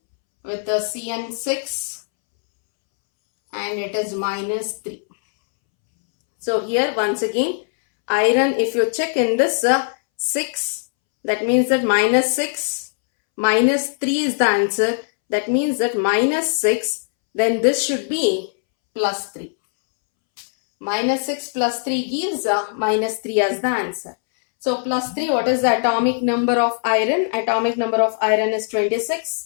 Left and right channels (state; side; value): silent; right; 65 dB below the other